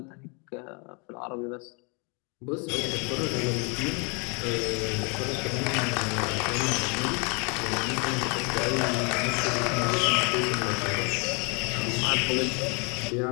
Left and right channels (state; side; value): quieter; right; 33.7 dB